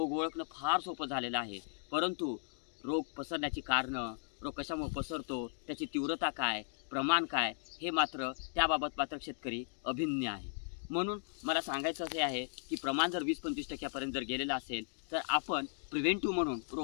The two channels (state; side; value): silent; right; digital silence